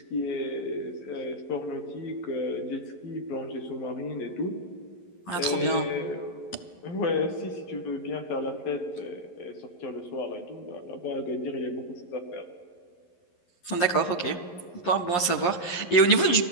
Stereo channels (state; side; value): late; right; 11 ms